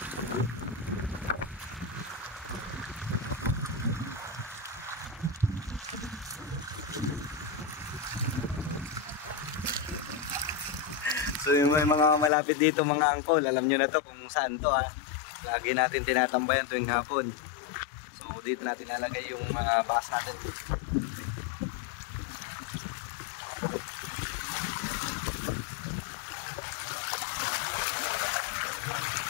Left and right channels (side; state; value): right; drops out; at 12.3 s